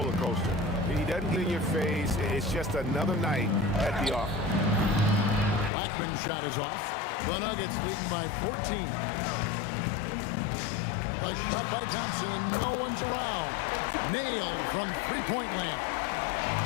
coaster. He doesn't get in your face. It's just another night at the office. Blackman's shot is off. The Nuggets leading by 14. The shot by Thompson, and no one's around. Nailed from three-point land.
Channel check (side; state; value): right; drops out; at 5.7 s